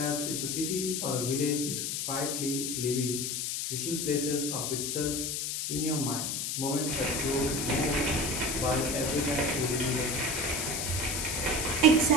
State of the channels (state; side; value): noise; left; hiss, 1 dB below the sound